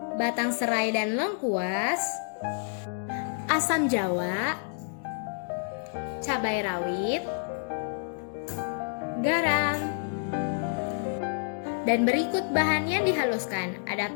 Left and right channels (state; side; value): silent; right; digital silence